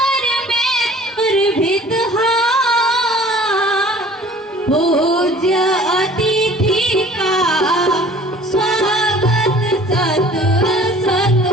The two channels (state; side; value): normal; both; correlation 0.49